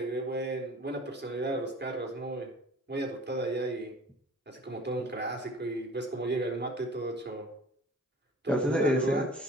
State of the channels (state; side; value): normal; both; correlation 0.47